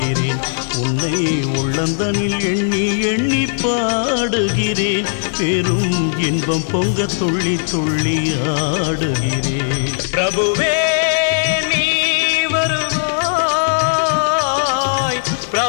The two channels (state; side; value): silent; right; 63 dB below the other